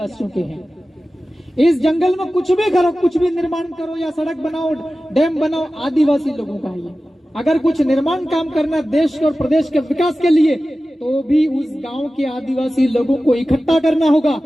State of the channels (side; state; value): both; normal; correlation 0.95